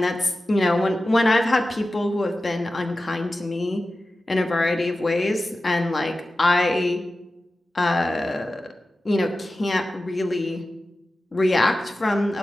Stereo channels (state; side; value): normal; both; correlation 0.94